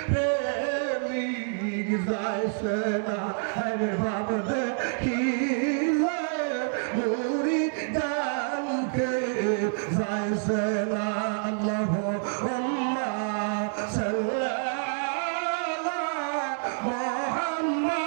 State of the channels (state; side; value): silent; left; 60 dB below the other